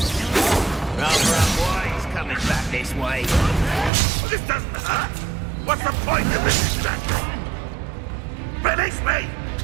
Rather unwise coming back this way. Well, this doesn't hurt. What's the point of this exactly? Release me!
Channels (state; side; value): drops out; left; at 3.9 s